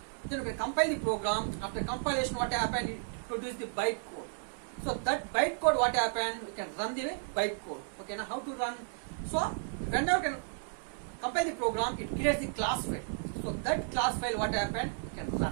Then you can compile the program. After compilation, what happened? It produce the byte code. So that byte code, what happened? You can run the byte code. Okay, now how to run? So whenever you can compile the program, it creates the class file. So that class file, what happened? You can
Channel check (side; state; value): left; silent; digital silence